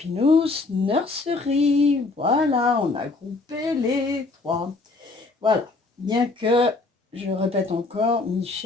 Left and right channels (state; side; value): quieter; right; 3.6 dB